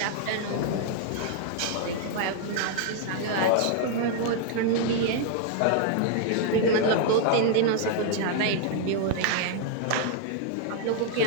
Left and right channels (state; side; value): different; both; correlation 0.00